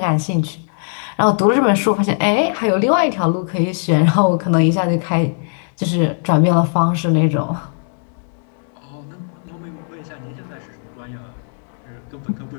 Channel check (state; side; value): silent; right; digital silence